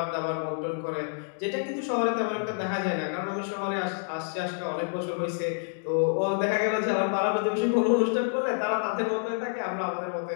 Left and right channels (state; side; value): silent; right; digital silence